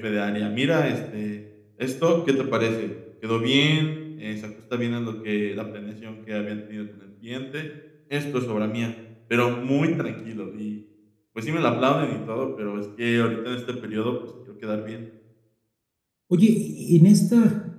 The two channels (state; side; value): identical; both; correlation 1.00